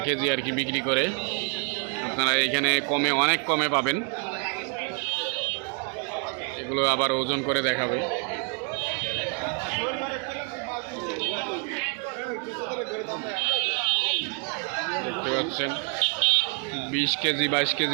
কেজি আর কি বিক্রি করে। আপনারা এখানে কমে, অনেক কমে পাবেন। এগুলো আবার ওজন করে দেখাবে। দেখতে পাচ্ছেন 20 কেজি 22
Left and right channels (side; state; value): left; quieter; 39.2 dB